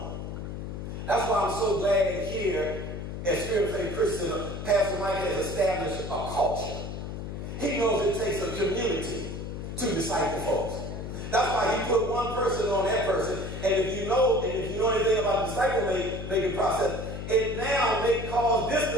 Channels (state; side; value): noise; left; hum, 7 dB below the sound